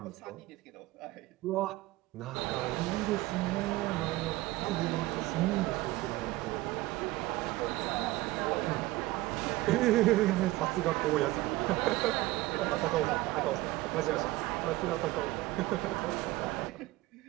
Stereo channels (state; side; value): quieter; left; 18.5 dB